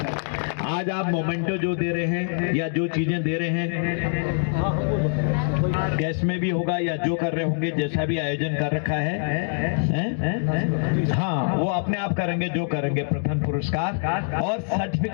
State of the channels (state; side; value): silent; right; 62 dB below the other